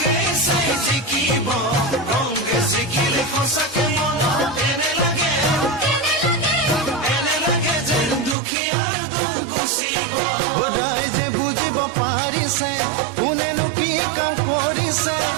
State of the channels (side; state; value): left; drops out; at 8.3 s